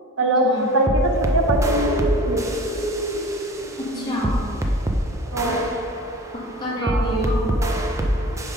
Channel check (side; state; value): both; normal; correlation 0.40